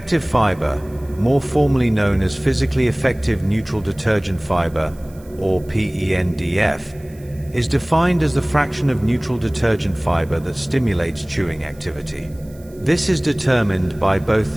fiber, more formally known as physically effective neutral detergent fiber, or PENDF, is defined as the fraction of neutral detergent fiber that stimulates chewing activity. This is determined by both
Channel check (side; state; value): right; noise; hiss, 27 dB below the sound